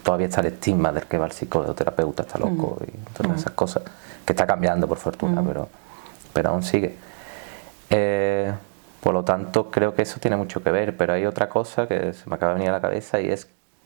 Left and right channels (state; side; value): silent; left; 63 dB below the other